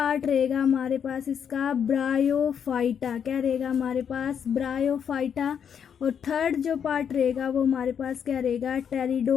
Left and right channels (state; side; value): quieter; right; 7.8 dB